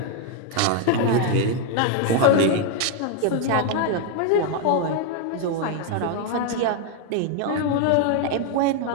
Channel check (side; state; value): both; different; correlation 0.01